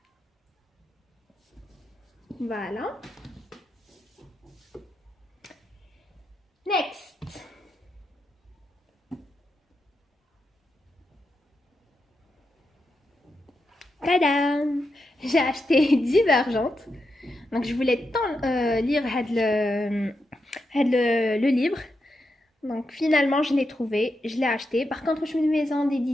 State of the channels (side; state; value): both; normal; correlation 0.86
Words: Voilà. Next. Tadam! J'ai acheté Divergente. Donc je voulais tant lire le livre. Donc finalement je l'ai trouvé, je l'ai acheté. Par contre je suis une maison